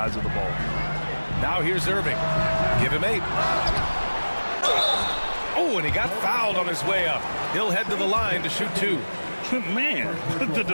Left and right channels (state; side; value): inverted; both; correlation -1.00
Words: of the ball. Now here's Irving. Give him 8. Oh, and he got fouled on his way up. He'll head to the line to shoot 2. Man, the